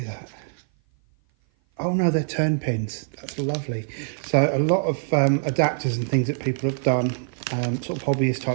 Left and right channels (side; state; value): left; silent; 56 dB below the other